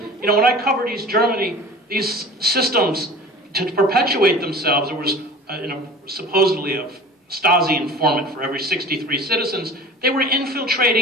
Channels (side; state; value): both; normal; correlation 0.41